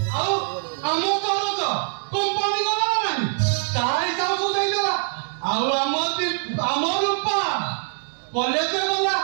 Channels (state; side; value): silent; left; 63 dB below the other